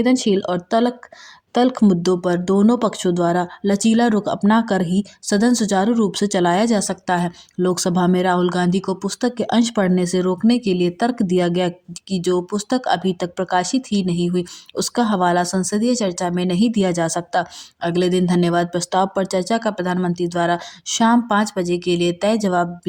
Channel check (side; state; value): both; identical; correlation 1.00